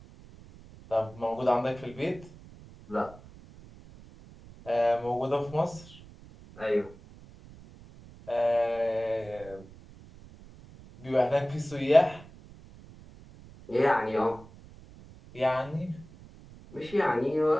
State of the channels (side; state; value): right; noise; rumble, 20 dB below the sound